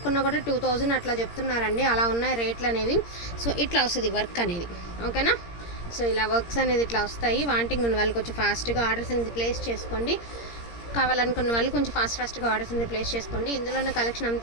కూడా 2000 అట్లా చెప్తున్నారండి. అలా ఉన్నాయి రేట్లు అనేవి. సో ఇట్లా వస్తుంది వర్క్ అనేది. ఓకేనా? సో ఇలా వర్క్స్ అనేది ఇట్లా వస్తాయి. వాంటింగ్ ఉన్న వాళ్ళు కొంచెం ఫాస్ట్గా ఆర్డర్స్ అనేది ప్లేస్ చేసుకోండి. కావాలనుకున్న వాళ్ళు కొంచెం ఫాస్ట్గా ఆర్డర్స్ అనేది ప్లేస్ చేసుకోండి. ఇందులో ఉన్న కలెక్షన్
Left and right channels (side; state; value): right; late; 17 ms